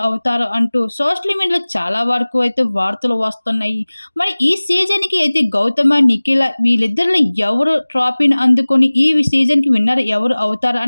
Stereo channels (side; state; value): both; inverted; correlation -1.00